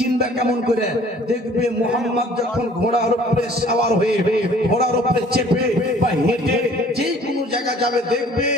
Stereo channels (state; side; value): normal; both; correlation 0.53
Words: কেমন করে? দেখবে মুহাম্মদ যখন ঘোড়ার উপরে সওয়ার হয়ে, ঘোড়ার উপরে চেপে বা হেঁটে যে কোনো জায়গা যাবে, দেখবে